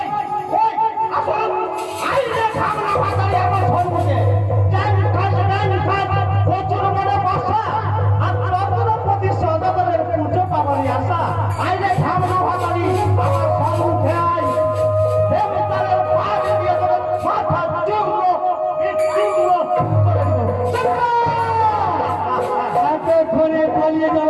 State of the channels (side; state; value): both; identical; correlation 1.00